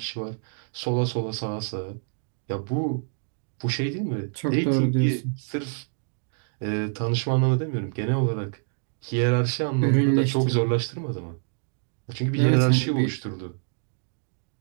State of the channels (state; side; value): silent; left; digital silence